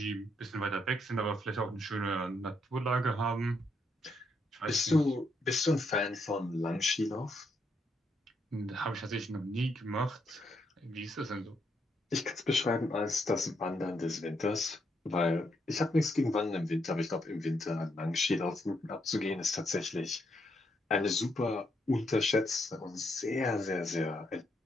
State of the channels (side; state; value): both; normal; correlation 0.77